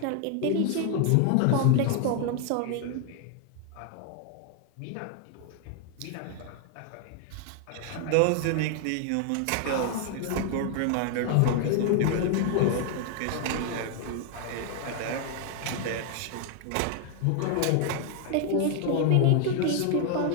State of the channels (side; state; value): both; different; correlation 0.00